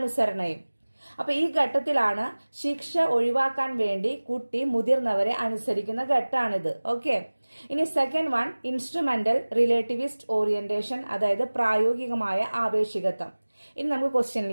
അപ്പൊ ഈ ഘട്ടത്തിലാണ് ശിക്ഷ ഒഴിവാക്കാൻ വേണ്ടി കുട്ടി മുതിർന്നവരെ അനുസരിക്കുന്ന ഘട്ടമാണിത്. ഓക്കെ. ഇനി സെക്കൻഡ് വൺ ഇൻസ്ട്രുമെന്റൽ റിലേറ്റിവിസ്റ്റ് ഓറിയന്റേഷൻ, അതായത് പ്രായോഗികമായ ആപേക്ഷികത്വം. ഇനി നമുക്ക്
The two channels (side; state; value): both; inverted; correlation -1.00